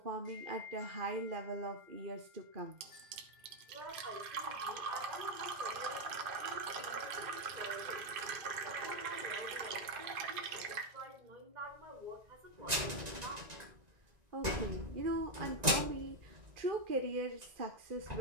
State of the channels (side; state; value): left; late; 1.9 ms